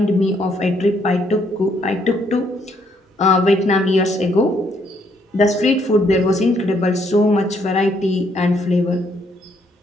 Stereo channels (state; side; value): normal; both; correlation 0.71